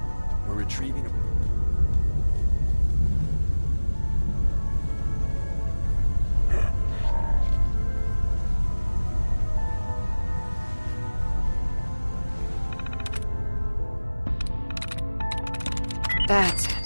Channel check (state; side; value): inverted; both; correlation -1.00